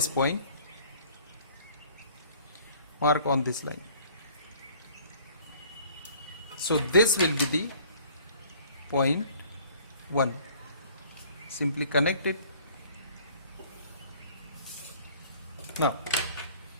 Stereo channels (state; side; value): inverted; both; correlation -0.53